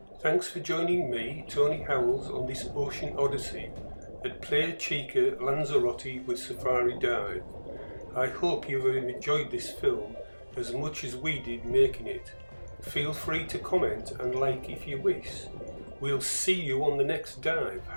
Thanks for joining me, Tony Howells, on this ocean odyssey at Playa Chica, Lanzarote with Safari Dive. I hope you have enjoyed this film as much as we did making it. Feel free to comment and like if you wish. We'll see you on the next dive.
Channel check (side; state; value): both; inverted; correlation -1.00